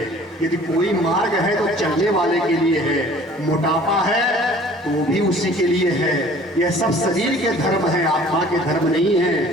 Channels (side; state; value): both; normal; correlation 0.50